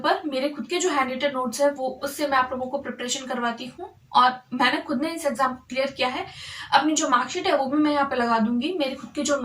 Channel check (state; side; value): identical; both; correlation 1.00